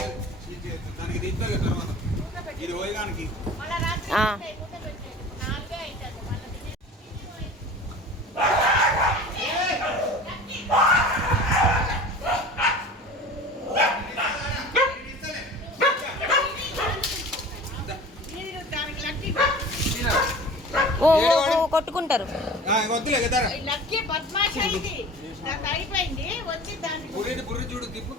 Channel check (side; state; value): both; normal; correlation 0.40